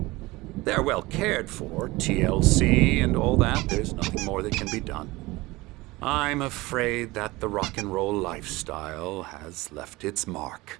They're well cared for, TLC and all that. There's nothing more that can be done. I'm afraid that the rock and roll lifestyle has left its mark.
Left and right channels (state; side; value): quieter; left; 21.0 dB